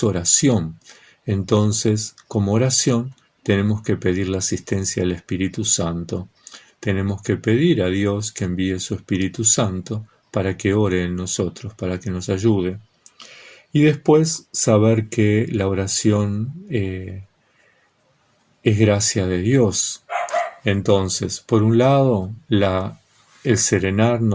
oración. Entonces, como oración, tenemos que pedir la asistencia del Espíritu Santo. Tenemos que pedir a Dios que envíe su Espíritu Santo para que ore en nosotros, para que nos ayude. Y después saber que la oración es gracia de Dios. Entonces, por un lado, el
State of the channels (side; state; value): both; identical; correlation 1.00